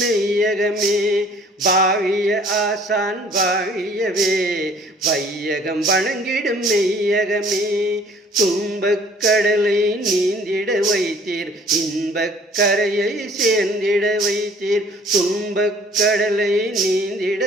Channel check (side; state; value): both; normal; correlation 0.55